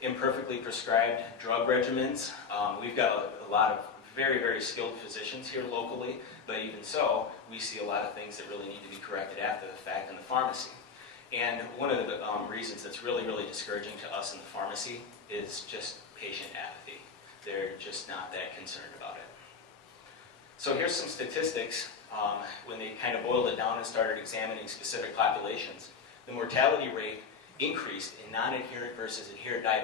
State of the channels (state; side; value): quieter; right; 5.6 dB